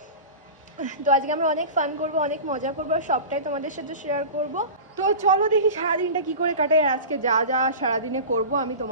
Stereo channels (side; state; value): both; inverted; correlation -0.32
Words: তো আজকে আমরা অনেক ফান করবো, অনেক মজা করবো, আর সবটাই তোমাদের সাথে শেয়ার করবো। তো চলো দেখি সারাদিনটা কি করে কাটাই, আর আজকে যা যা সারাদিনে করবো আমি